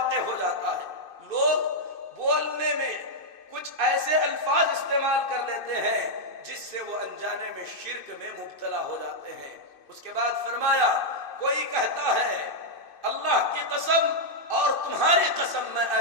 ہو جاتا ہے۔ لوگ بولنے میں کچھ ایسے الفاظ استعمال کر لیتے ہیں جس سے وہ انجانے میں شرک میں مبتلا ہو جاتے ہیں۔ اس کے بعد فرمایا، کوئی کہتا ہے اللہ کی قسم اور تمہاری قسم میں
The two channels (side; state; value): right; late; 2.6 ms